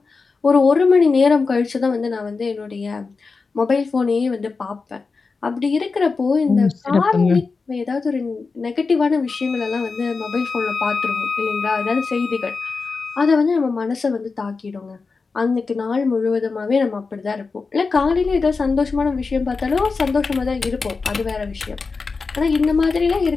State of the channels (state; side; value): quieter; right; 4.4 dB